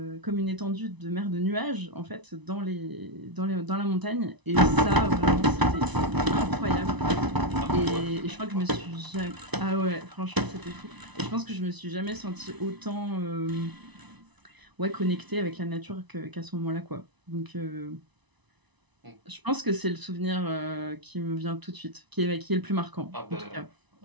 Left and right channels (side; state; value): left; late; 1.0 ms